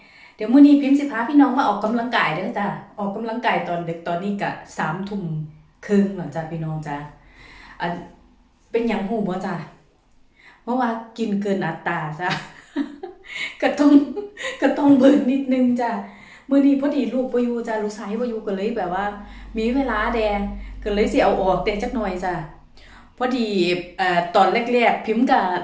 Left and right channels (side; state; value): both; identical; correlation 1.00